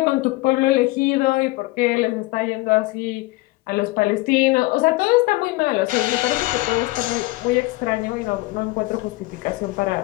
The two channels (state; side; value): quieter; right; 21.0 dB